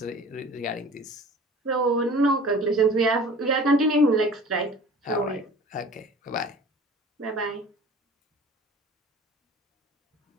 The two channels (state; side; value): normal; both; correlation 0.44